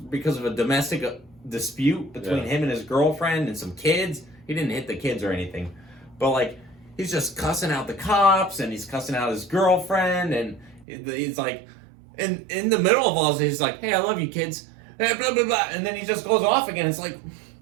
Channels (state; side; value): drops out; left; at 10.9 s